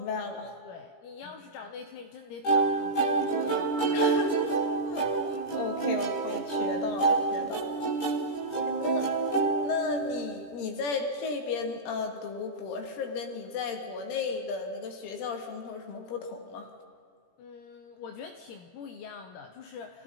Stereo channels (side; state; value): right; late; 17 ms